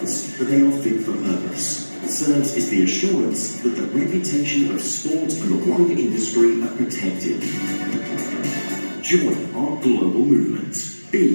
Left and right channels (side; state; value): both; inverted; correlation -1.00